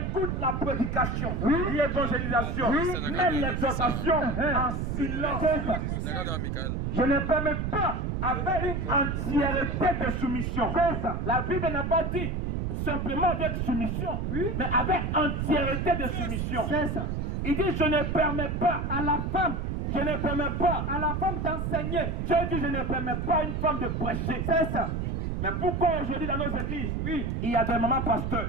la prédication, l'évangélisation, même l'exhortation en silence. Je ne permets pas avec une entièreté de soumission. La Bible n'a pas dit simplement avec soumission, mais avec entièreté de soumission. Il dit je ne permets pas à la femme. Je ne permets pas à la femme d'enseigner. Dieu dit je ne permets pas à une femme de prêcher. C'est ça. Mais pourquoi aujourd'hui dans nos églises, Oui. il y a des mamans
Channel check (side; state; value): right; noise; rumble, 1 dB below the sound